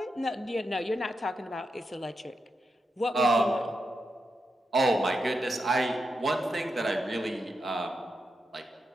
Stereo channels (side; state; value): both; normal; correlation 0.86